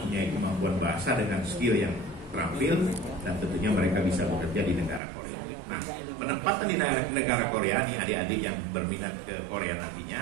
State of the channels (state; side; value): drops out; left; at 5.0 s